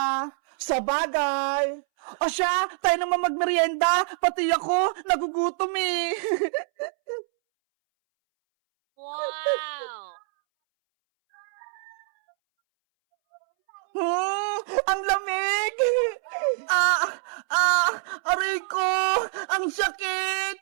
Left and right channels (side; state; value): left; silent; 61 dB below the other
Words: Sa bagay. O siya, tayo naman magmerienda. Pati ako, nagugutom eh. Wow! Ang lamig! Aray ko! Ang sakit!